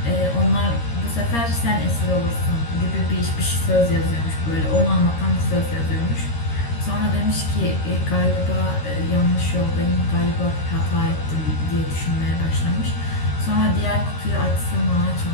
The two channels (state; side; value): late; right; 13 ms